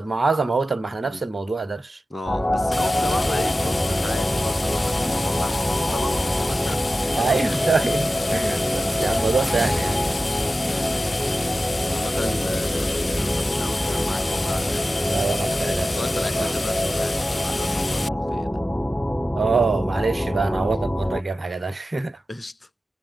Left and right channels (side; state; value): both; normal; correlation 0.94